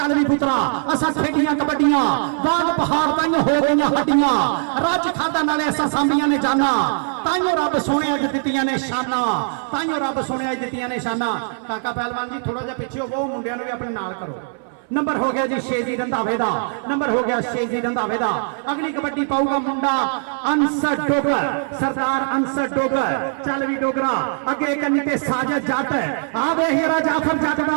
भी पुत्रा असा खेडियां कबड्डियां बाग पहाड़ ताइयों हो गई हड्डियां रज खादा नाले असा सांभियां ने जाना ताइयों रब सोने अज दित्तियां ने शाना ताइयों रब सोने अज दित्तियां ने शाना। काका पहलवान जी थोड़ा जिहा पिछे हो मुंडियां नूं भी अपने नाल करो। नंबर हो गया जी शेजी रंधावे दा। नंबर हो गया शेजी रंधावे दा। अगली कबड्डी पाऊगा मुंडा अंसर डोगर सरदार अंसर डोगर। चल भी डोगरा अगे कन्नी ते साजद जट आ वे हीरा जाफर जट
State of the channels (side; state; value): left; silent; 61 dB below the other